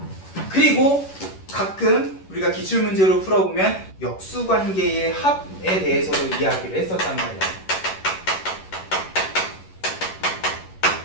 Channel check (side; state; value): right; late; 11 ms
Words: 그리고 가끔 우리가 기출문제로 풀어보면 역수관계의 합에 대해서도 이야기를 했었단 말이야.